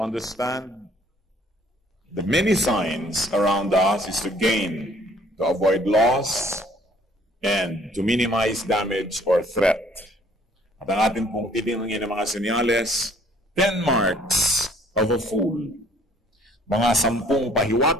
understand the many signs around us is to gain, to avoid loss, and to minimize damage or threat. At ang atin pong titingnan ng mga senyales, 10 marks of a fool. Mga 10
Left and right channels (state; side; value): normal; both; correlation 0.58